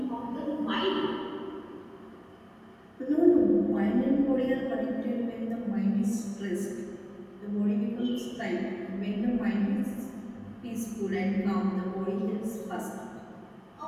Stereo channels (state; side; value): identical; both; correlation 1.00